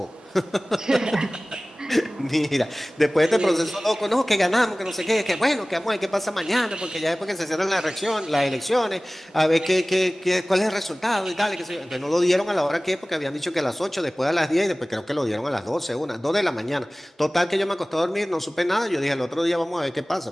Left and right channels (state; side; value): normal; both; correlation 0.98